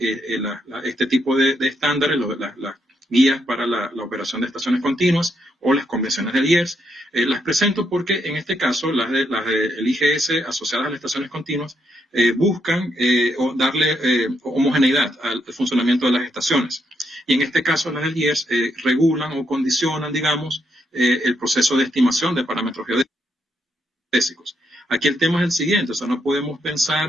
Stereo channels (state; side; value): normal; both; correlation 0.78